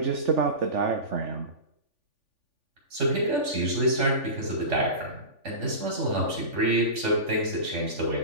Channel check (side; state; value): left; late; 3.5 ms